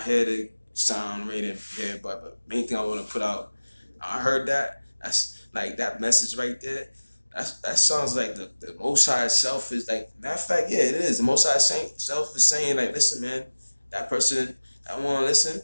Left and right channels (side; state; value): both; inverted; correlation -1.00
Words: here to sound rated here. But main thing I want to put out, I heard that. That's like that message right there. That sounds like the Most High self is like. Matter of fact, yeah, it is. The Most High self is saying like, listen, man, that person that want to listen,